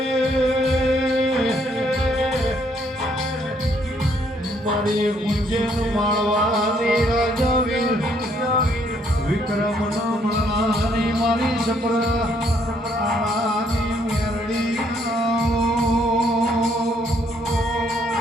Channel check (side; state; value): both; normal; correlation 0.69